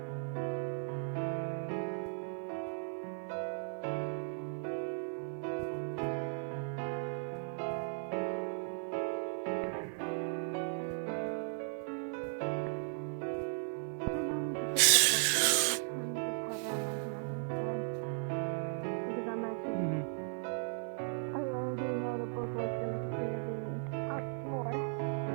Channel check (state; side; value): silent; left; 53 dB below the other